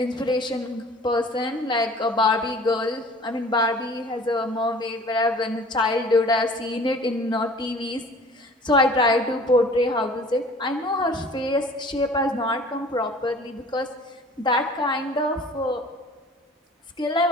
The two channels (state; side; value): normal; both; correlation 0.47